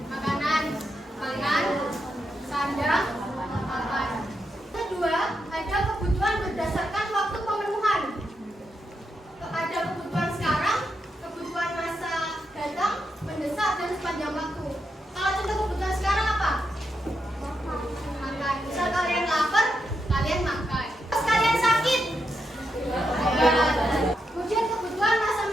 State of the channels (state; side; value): normal; both; correlation 0.84